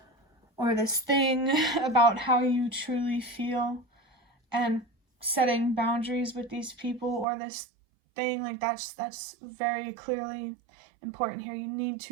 or this thing about how you truly feel, and setting boundaries with these people or this thing, like that's very clearly important here. You need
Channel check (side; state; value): left; drops out; at 7.2 s